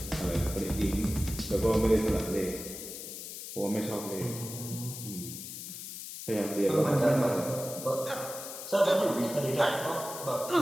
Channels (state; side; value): noise; left; hiss, 9 dB below the sound